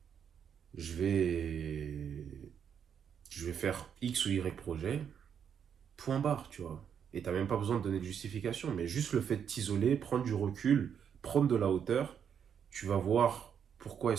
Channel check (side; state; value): left; quieter; 7.9 dB